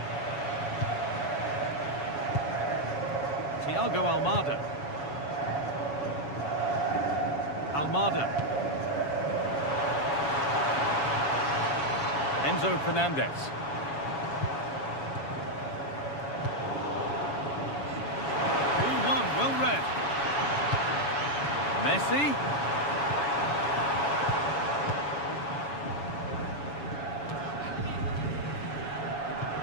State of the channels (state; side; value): late; right; 7.1 ms